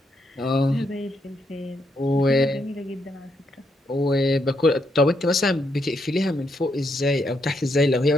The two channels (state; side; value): normal; both; correlation 0.78